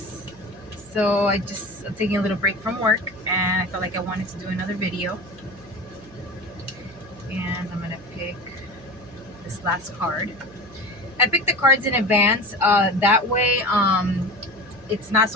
So I'm taking a little break from work and I felt like I wanted to do another video. And I'm going to pick this last card. I picked the cards in advance. That way, it's not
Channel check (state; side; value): noise; right; hum, 22 dB below the sound